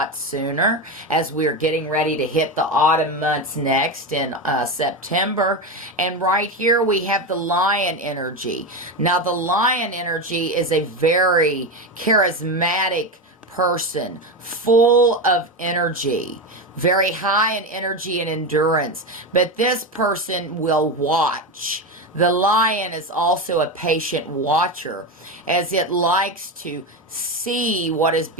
sooner, as we're getting ready to hit the autumn months next in September. And right here we have the Lion energy. Now, the Lion energy is a very charismatic person, full of energy, very high in energy and endurance. But this person will watch. The lion is also a patient watcher, as it likes to see what is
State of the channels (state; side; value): normal; both; correlation 0.16